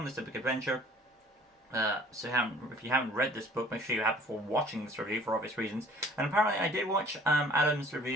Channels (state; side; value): normal; both; correlation 0.52